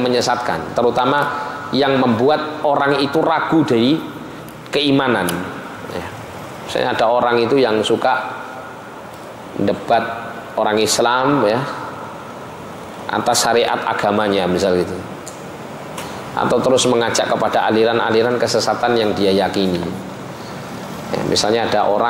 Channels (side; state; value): both; identical; correlation 1.00